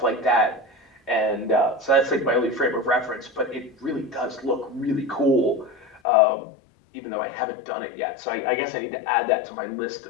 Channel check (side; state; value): right; drops out; at 6.0 s